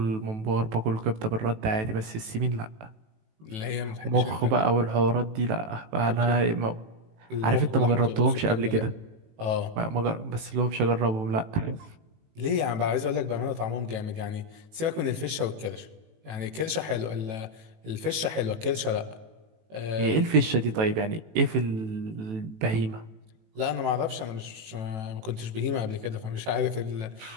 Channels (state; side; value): late; left; 18 ms